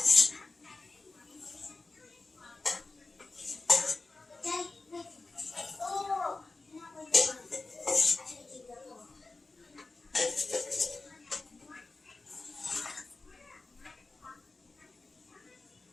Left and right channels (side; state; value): right; quieter; 3.5 dB